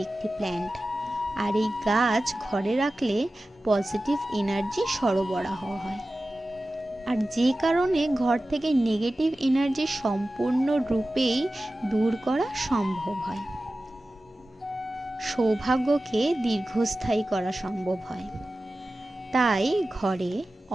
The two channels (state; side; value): normal; both; correlation 0.95